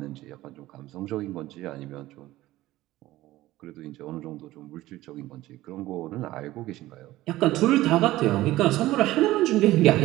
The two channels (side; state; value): left; quieter; 16.5 dB